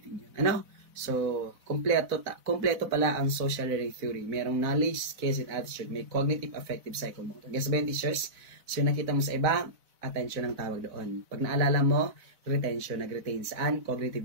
yun. So, kompleto pala ang social learning theory. Merong knowledge, skills, and attitude. May cognitive, affective, psychomotor. Guess ba yung teachers? So, yung nakita mo sa iba, attention ang tawag doon. Pag naalala mo, retention, nag-retain. Saan?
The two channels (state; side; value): late; left; 4.0 ms